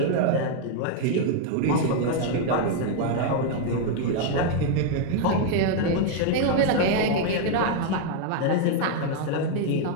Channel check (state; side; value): different; both; correlation 0.00